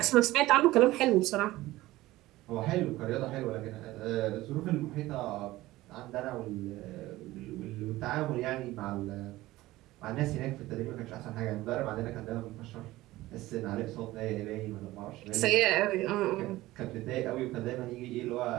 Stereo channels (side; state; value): left; quieter; 17.5 dB